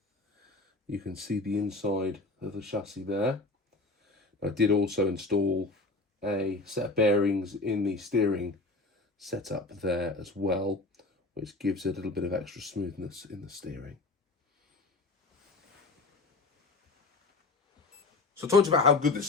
you can see the inside of the chassis there. I did also install a set of bearings in the steering setup there as well, which gives it a little bit of extra smoothness in the steering. So talking about how good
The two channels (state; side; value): quieter; right; 3.3 dB